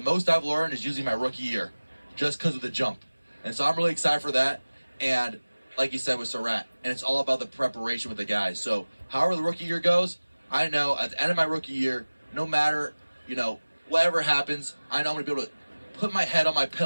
most I've learned is using my rookie year, just because of the jump. And so I'm really excited for that. And like you said with Surratt, and it's all about the preparation with the guys. So however the rookie year goes, I know at the end of my rookie year, no matter whatever happens, I know I'm gonna be able to put my head on my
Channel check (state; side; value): inverted; both; correlation -1.00